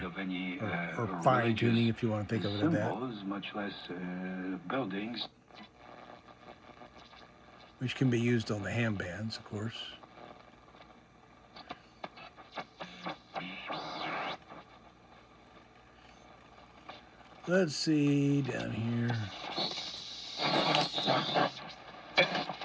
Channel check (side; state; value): both; identical; correlation 1.00